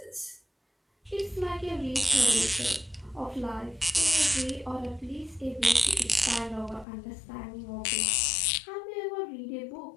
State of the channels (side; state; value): right; drops out; at 6.9 s